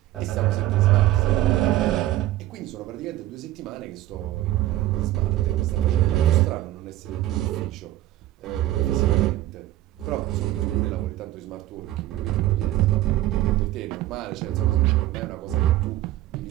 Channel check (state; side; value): quieter; left; 14.9 dB